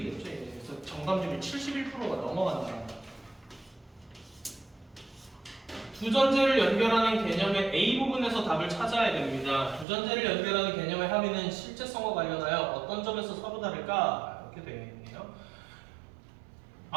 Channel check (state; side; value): drops out; left; at 9.9 s